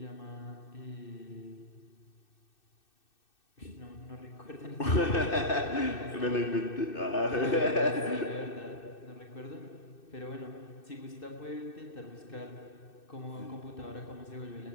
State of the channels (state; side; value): late; right; 2.6 ms